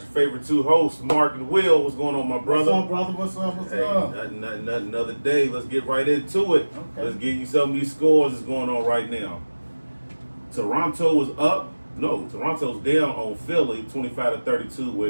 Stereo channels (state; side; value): inverted; both; correlation -1.00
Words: favorite two hosts, Mark and Will. What's going on, my brother? What's up, brother? What's up? What's up? Nothing. Another day. Let's get right into it. Okay. Let's give you some of these scores that's going on right now. Toronto was up. No, Toronto's down on Philly, 25-32,